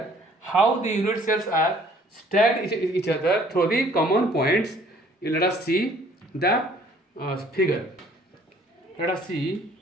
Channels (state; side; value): normal; both; correlation 0.57